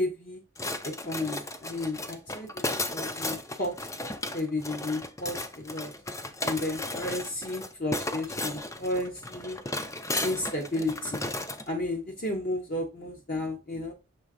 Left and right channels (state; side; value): normal; both; correlation 0.35